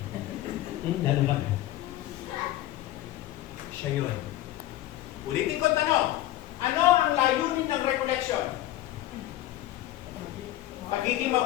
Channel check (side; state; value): right; quieter; 14.8 dB